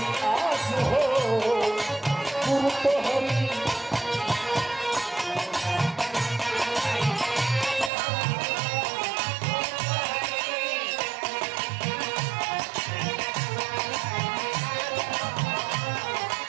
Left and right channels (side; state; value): left; drops out; at 7.9 s